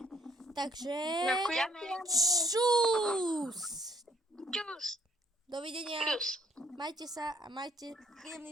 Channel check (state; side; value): normal; both; correlation 0.65